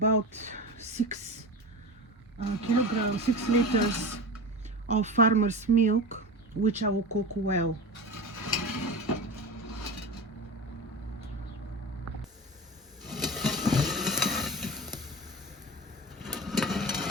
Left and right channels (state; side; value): normal; both; correlation 0.28